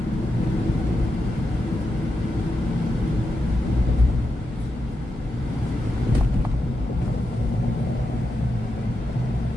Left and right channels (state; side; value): normal; both; correlation 0.87